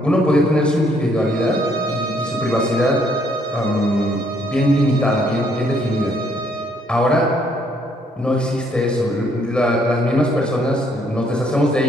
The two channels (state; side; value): normal; both; correlation 0.67